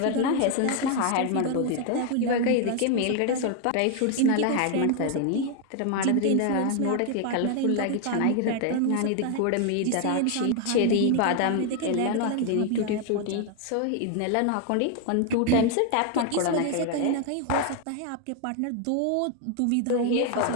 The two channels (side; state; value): both; different; correlation 0.00